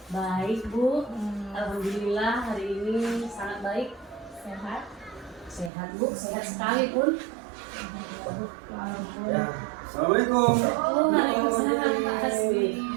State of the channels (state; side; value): drops out; left; at 5.7 s